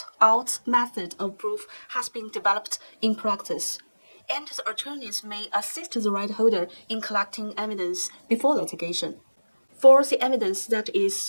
out method of proof has been developed in practice, and the attorneys may assist the right holder in collecting evidence before litigation. For the evidence that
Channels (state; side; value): inverted; both; correlation -1.00